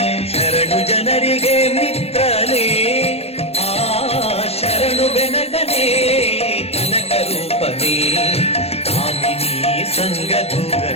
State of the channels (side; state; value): right; late; 0.29 ms